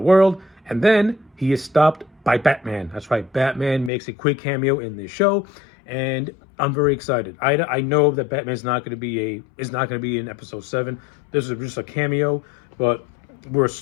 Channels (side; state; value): right; drops out; at 3.9 s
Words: world, and then he is stopped by Batman. That's right, Batman makes a quick cameo in this show, and I'm very excited. I know that Batman's not going to be in episode 7. This is just a cameo, but